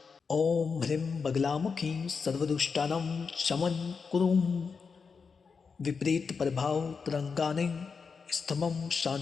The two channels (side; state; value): right; quieter; 5.4 dB